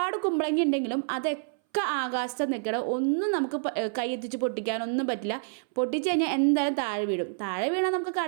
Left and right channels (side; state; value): left; silent; 59 dB below the other